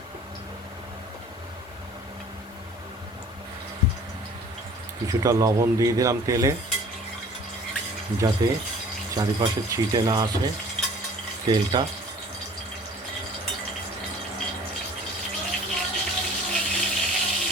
কিছুটা লবণ দিয়ে দিলাম তেলে, যাতে চারিপাশে ছিটে না আসে তেলটা।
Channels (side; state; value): both; normal; correlation 0.49